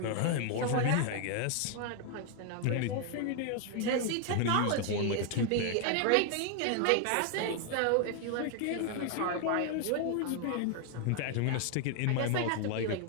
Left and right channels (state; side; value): different; both; correlation 0.00